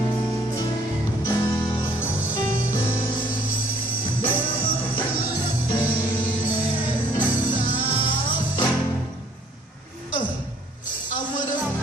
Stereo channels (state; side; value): normal; both; correlation 0.61